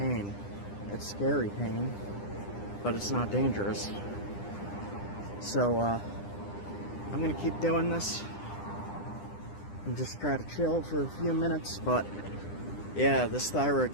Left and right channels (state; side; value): late; right; 9.9 ms